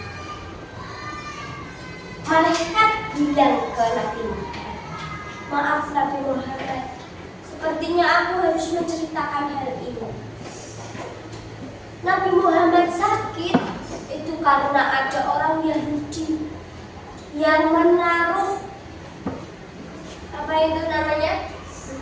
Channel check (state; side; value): identical; both; correlation 1.00